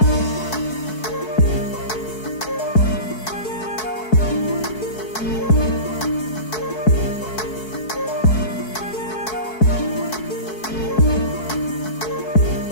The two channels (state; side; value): late; right; 4.6 ms